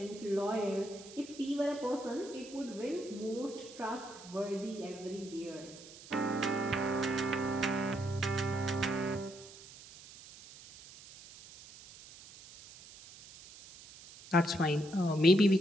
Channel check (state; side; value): noise; right; hiss, 18 dB below the sound